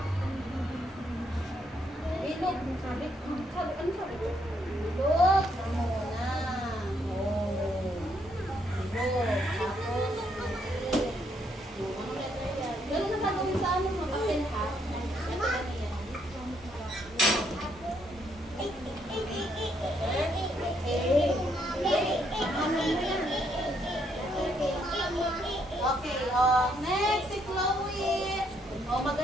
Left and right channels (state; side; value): normal; both; correlation 0.73